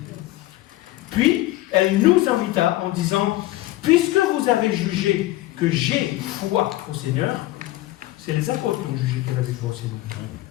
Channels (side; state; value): right; quieter; 17.0 dB